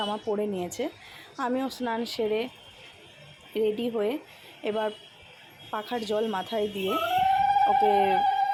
পরে নিয়েছে। আমিও স্নান সেরে রেডি হয়ে এবার পাখার জল মাথায় দিয়ে ওকে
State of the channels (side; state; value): both; identical; correlation 1.00